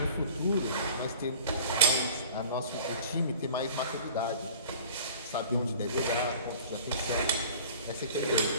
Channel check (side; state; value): both; inverted; correlation -0.46